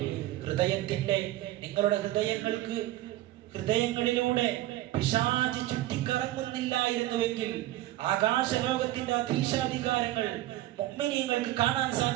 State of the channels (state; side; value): quieter; left; 15.5 dB